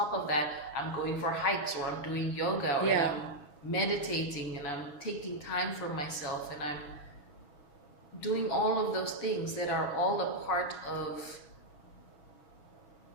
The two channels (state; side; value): late; right; 7.0 ms